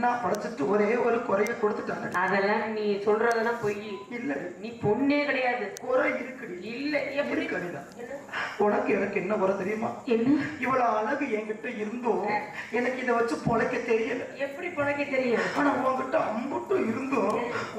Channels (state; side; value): identical; both; correlation 1.00